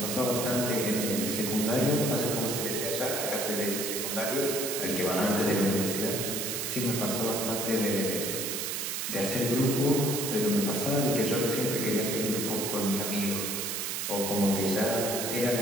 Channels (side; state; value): right; noise; hiss, 2 dB below the sound